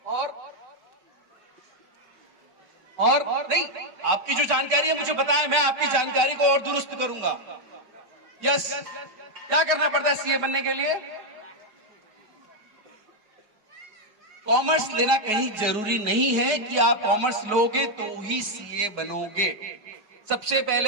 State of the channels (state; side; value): late; left; 4.7 ms